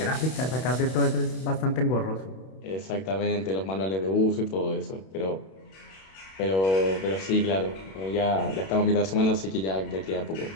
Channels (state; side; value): late; right; 31 ms